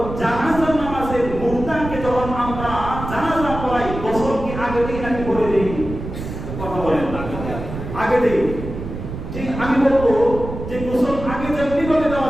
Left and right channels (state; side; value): noise; right; rumble, 8 dB below the sound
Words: জানাজার নামাজের মুর্দাকে যখন আমরা জানাজা পড়াই, গোসল কি আগে দিই নাকি পরে দিই? কথা বলেন। আগে দিই। ঠিক আমি বলবো যে গোসল আগে যেমনি ভাবে